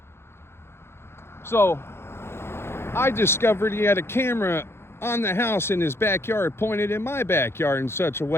So I discovered he had a camera on the house in his backyard pointed in my backyard in such a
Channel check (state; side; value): late; right; 0.12 ms